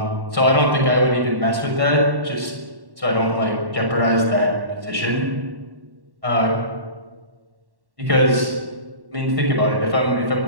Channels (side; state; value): left; late; 1.1 ms